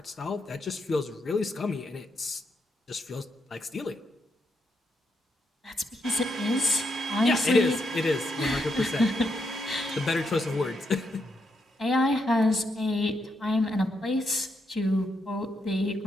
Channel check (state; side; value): normal; both; correlation 0.80